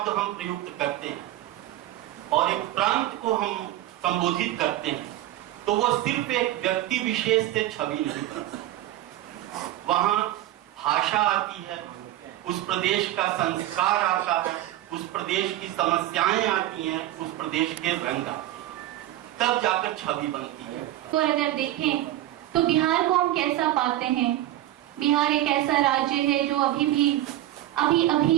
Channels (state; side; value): quieter; left; 14.3 dB